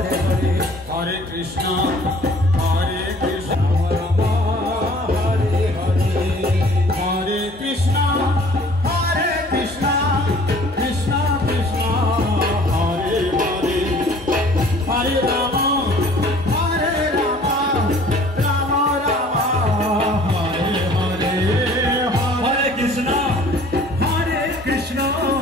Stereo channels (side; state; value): both; normal; correlation 0.52